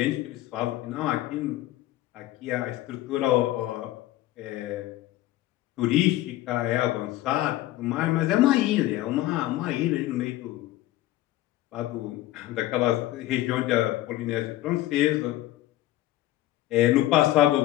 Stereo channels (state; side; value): quieter; right; 15.6 dB